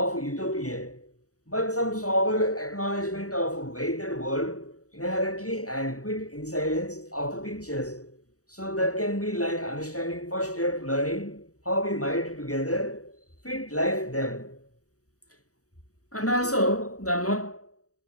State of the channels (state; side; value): late; right; 0.66 ms